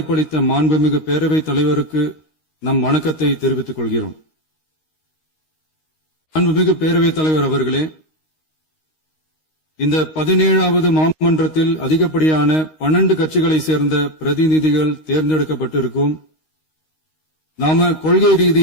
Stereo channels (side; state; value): right; late; 13 ms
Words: மாண்புமிகு பேரவைத் தலைவருக்கு நம் வணக்கத்தை தெரிவித்துக் கொள்கிறோம். மாண்புமிகு பேரவைத் தலைவர் அவர்களே, இந்த 17வது மாமன்றத்தில் அதிகப்படியான 12 கட்சிகளைச் சேர்ந்த பிரதிநிதிகள் தேர்ந்தெடுக்கப்பட்டிருக்கும். நாம கொள்கை